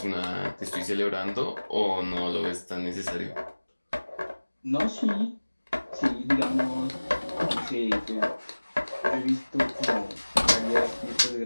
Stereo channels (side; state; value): both; inverted; correlation -1.00